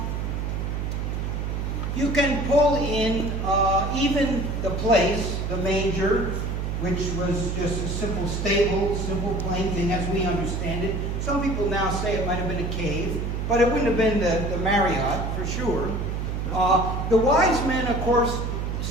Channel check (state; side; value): noise; right; hum, 2 dB below the sound